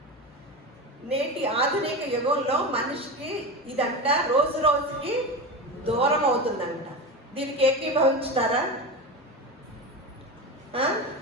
నేటి ఆధునిక యుగంలో మనిషికి ఇదంట రోజుకి దూరం అవుతుందంట. దీనికి ఏకీభవించుతారా?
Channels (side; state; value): both; normal; correlation 0.23